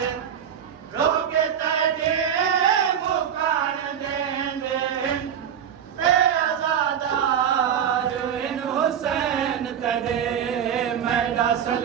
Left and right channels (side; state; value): left; quieter; 8.7 dB